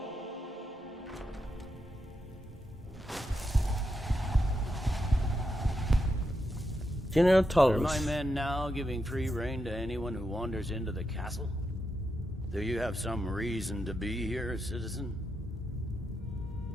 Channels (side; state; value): both; normal; correlation 0.85